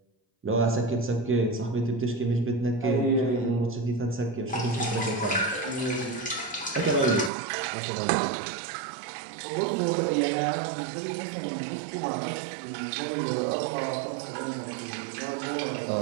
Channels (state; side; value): drops out; left; at 7.3 s